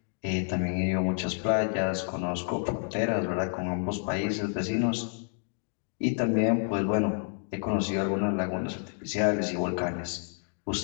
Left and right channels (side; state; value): right; silent; 56 dB below the other